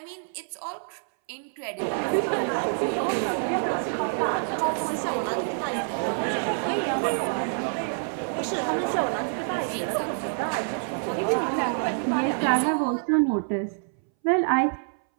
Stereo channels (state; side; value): silent; left; 60 dB below the other